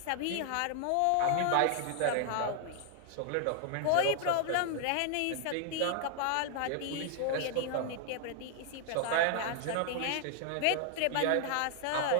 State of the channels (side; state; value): both; different; correlation 0.00